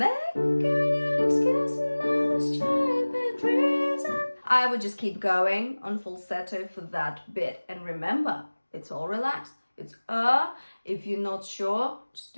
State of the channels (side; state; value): both; inverted; correlation -1.00